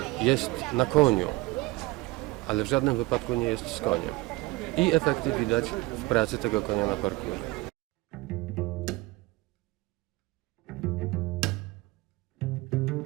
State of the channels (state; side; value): quieter; left; 21.6 dB